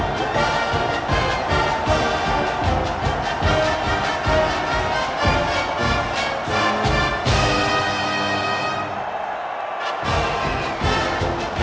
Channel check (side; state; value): both; identical; correlation 1.00